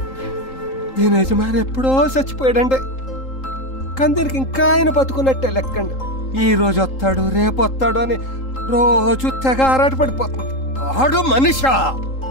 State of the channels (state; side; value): late; right; 3.8 ms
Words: దీని యజమాని ఎప్పుడో చచ్చిపోయాడండి, కానీ దీనికి ఇంకా ఆయన బతుకున్నట్టే లెక్కండి. ఈ రోజు వస్తాడు రేపు వస్తాడు అని రోజు తెగ ఆరాట పడిపోతుంది. ఆడు మనిషా,